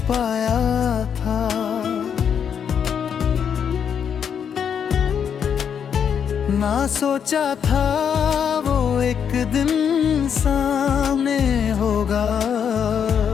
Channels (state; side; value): quieter; right; 7.7 dB